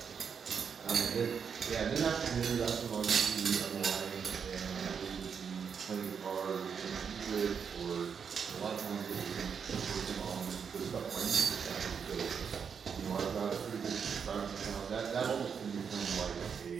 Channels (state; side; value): quieter; left; 6.7 dB